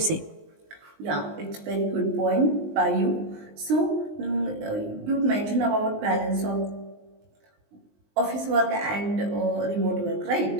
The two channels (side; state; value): left; late; 19 ms